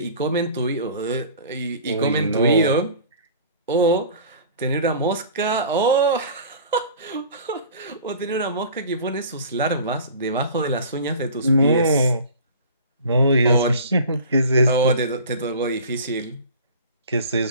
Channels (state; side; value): inverted; both; correlation -0.42